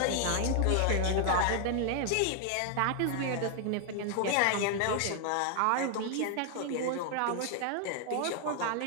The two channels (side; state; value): both; different; correlation 0.00